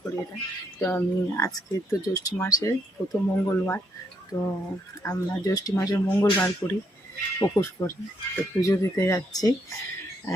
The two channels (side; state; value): both; normal; correlation 0.75